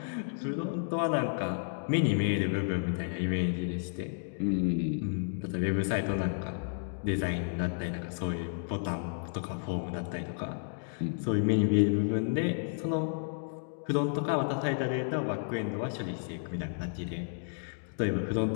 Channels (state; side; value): silent; right; digital silence